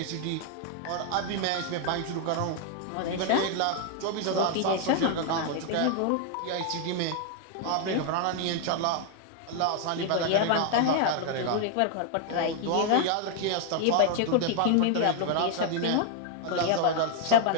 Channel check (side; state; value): both; different; correlation 0.00